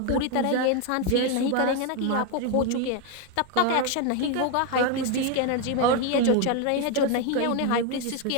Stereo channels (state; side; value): different; both; correlation 0.01